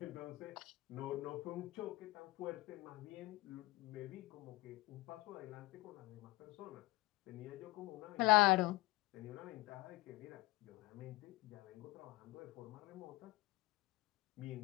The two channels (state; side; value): quieter; right; 20.0 dB